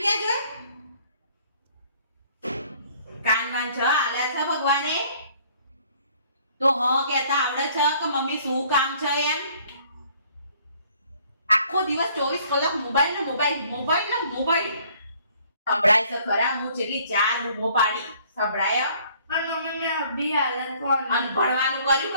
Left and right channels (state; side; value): inverted; both; correlation -0.59